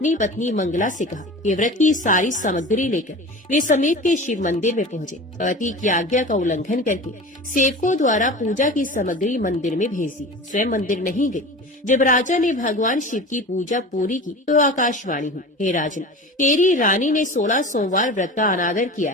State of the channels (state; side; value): normal; both; correlation 0.34